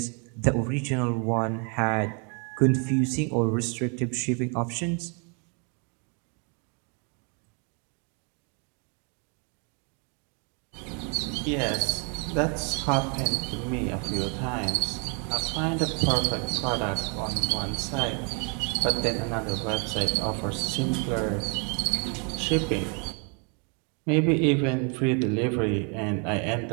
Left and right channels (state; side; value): quieter; left; 37.1 dB